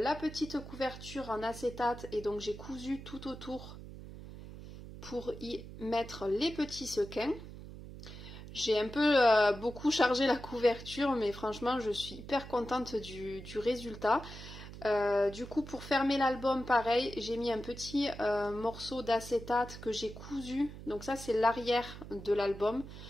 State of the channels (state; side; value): noise; right; hum, 13 dB below the sound